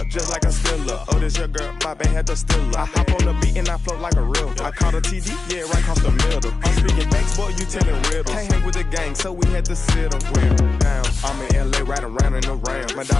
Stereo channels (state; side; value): quieter; right; 3.9 dB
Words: just like a Steeler. Oh, this your girl, my band had the Steeler. I hop on the beat and I float like a river. I caught a TD, yeah, right across the middle. I'm speaking banks, boy, you telling riddles. Can't hang with the gang, so we had to sit them down. I'm in LA, right around in the round. My